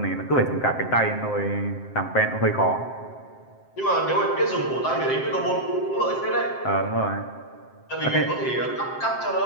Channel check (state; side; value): late; right; 7.6 ms